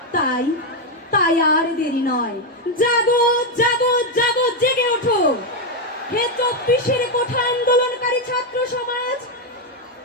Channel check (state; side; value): normal; both; correlation 0.04